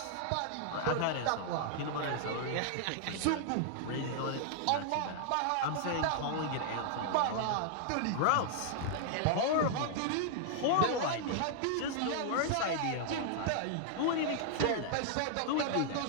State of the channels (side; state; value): both; different; correlation -0.01